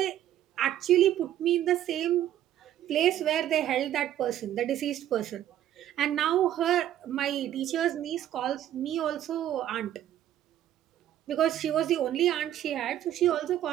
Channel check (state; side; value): quieter; left; 11.9 dB